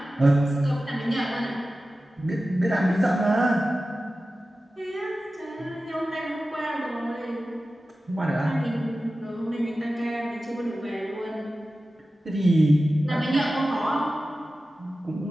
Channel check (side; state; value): both; normal; correlation 0.95